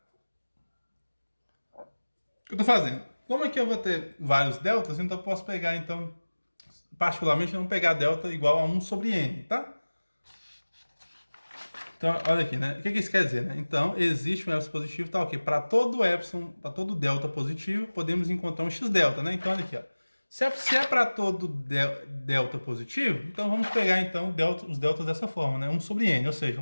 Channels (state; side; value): inverted; both; correlation -1.00